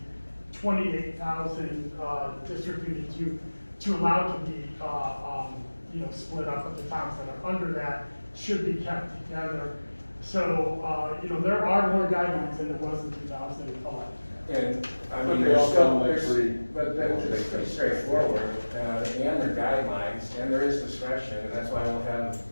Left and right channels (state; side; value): inverted; both; correlation -1.00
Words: 28,000 district units to allow to be split up, but the towns that are under that should be kept together. So, there are more guidelines than there was in 2011. And, I But mean, they there's all still, sound like there's, pretty- but that's pretty straightforward, and there are guidelines, and there is discretion, and that's why we'll have